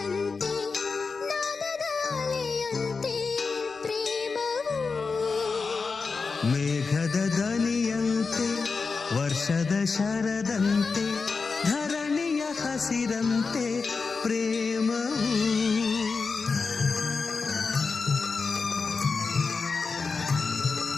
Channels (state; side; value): quieter; right; 4.6 dB